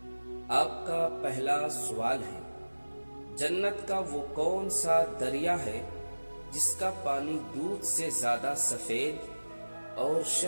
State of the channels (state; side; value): inverted; both; correlation -1.00